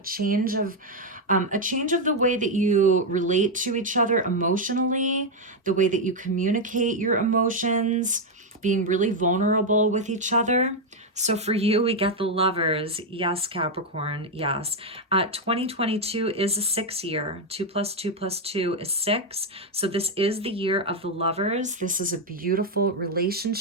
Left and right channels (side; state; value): both; normal; correlation 0.03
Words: of the way that you relate to each other emotionally, the way that you communicate your emotions, being really vulnerable with each other. So for you, we get the Lovers. Yes, Capricorn, yes. 2022 is a 6 year. 2 plus 2 plus 2 is 6. So this is the year of the Lovers. This is a beautiful